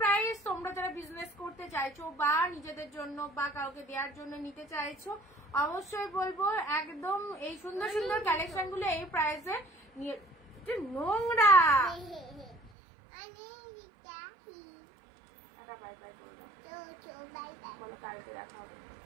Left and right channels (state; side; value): drops out; left; at 12.7 s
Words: প্রাইস। তোমরা যারা বিজনেস করতে চাইছো বা নিজেদের জন্য বা কাউকে দেওয়ার জন্য নিতে চাইছো, অবশ্যই বলবো একদম এই সুন্দর সুন্দর কালেকশন গুলো এই প্রাইসে নিয়ে। নোংরা বাই বাই বলো, কালকে দেখা হবে।